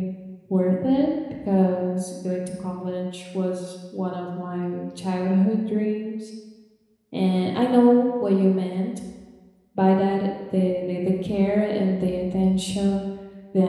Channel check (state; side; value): identical; both; correlation 1.00